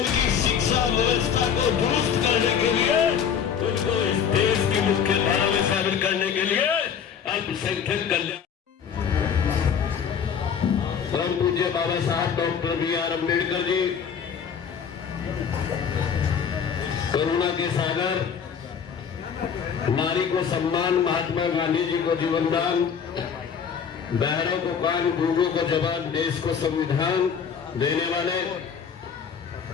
शिक्षा व्यवस्था को दुरुस्त करने के लिए, उनको इस देश की मुख्य धारा में शामिल करने के लिए अल्पसंख्यक कल्याण परम पूज्य बाबा साहब डॉक्टर B.R. अम्बेडकर जी, करुणा के सागर, नारी को सम्मान, महात्मा गांधी जी को जीवन दान, बहरों को कान, गूंगों को जबान, देश को संविधान देने वाले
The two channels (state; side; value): quieter; right; 7.4 dB